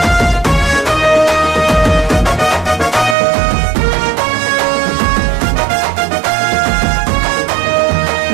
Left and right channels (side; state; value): left; drops out; at 3.2 s